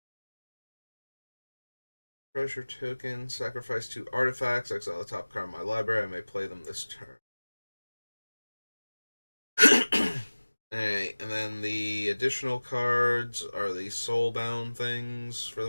Treasure token, sacrifice 2 artifacts, exile the top card of my library, I may play them this turn. Alright, and then the additional cards are the soulbound things for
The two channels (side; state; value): both; inverted; correlation -1.00